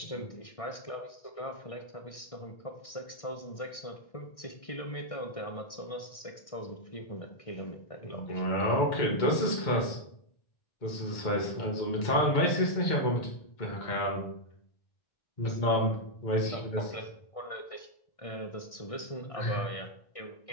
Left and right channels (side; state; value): right; late; 1.6 ms